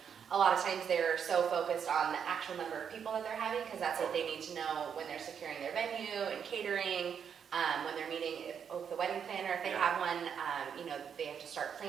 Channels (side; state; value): left; quieter; 7.5 dB